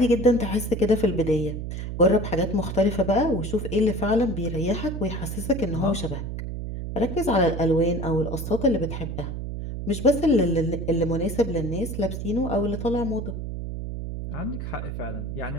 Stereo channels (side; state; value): right; noise; hum, 5 dB below the sound